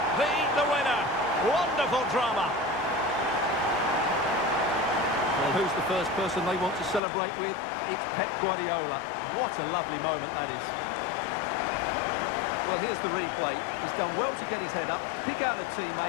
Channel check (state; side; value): drops out; right; at 7.0 s